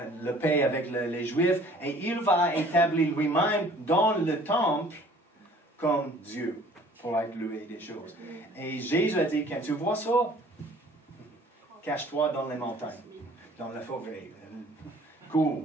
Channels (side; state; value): both; normal; correlation 0.53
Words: le paix avec les Juifs, et il va établir lui-même dans le temple comme Dieu, pour être loué des choses. Et Jésus a dit, quand tu vois ça, cache-toi dans les montagnes, dans la forêt,